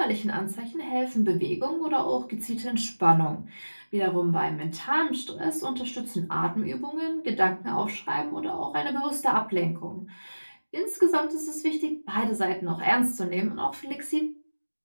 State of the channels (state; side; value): inverted; both; correlation -1.00